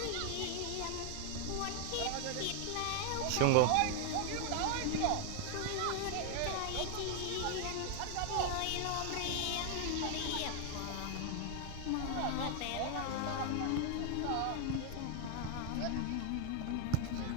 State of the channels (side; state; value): both; different; correlation 0.00